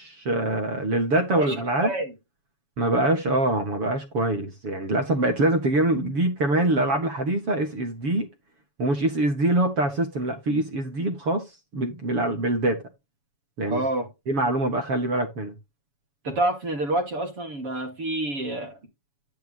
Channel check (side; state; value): left; late; 7.1 ms